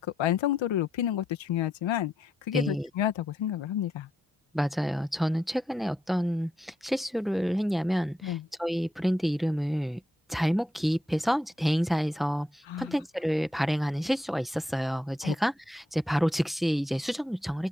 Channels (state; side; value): normal; both; correlation 0.79